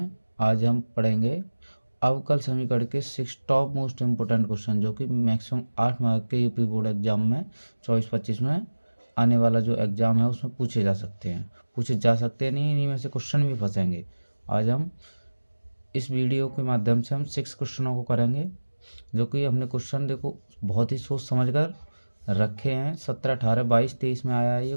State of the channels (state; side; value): inverted; both; correlation -1.00